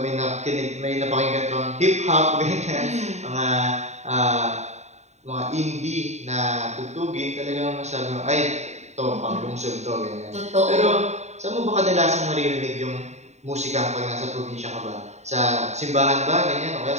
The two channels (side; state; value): left; late; 0.32 ms